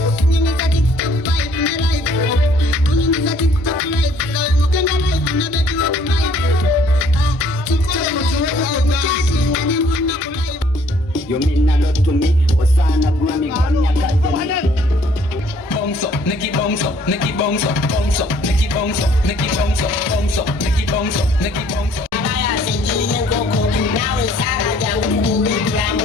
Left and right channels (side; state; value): both; normal; correlation 0.61